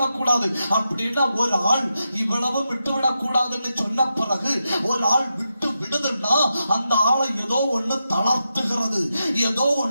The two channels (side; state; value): both; inverted; correlation -0.87